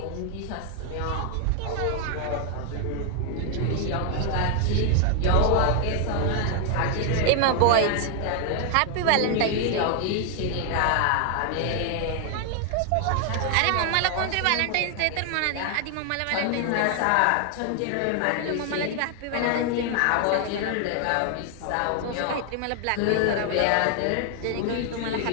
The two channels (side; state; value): both; different; correlation 0.00